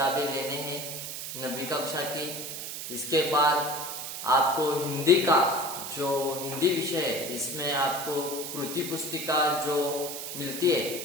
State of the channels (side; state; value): right; noise; hiss, 7 dB below the sound